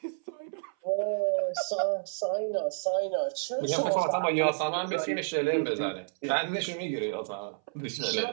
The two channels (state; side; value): silent; left; 58 dB below the other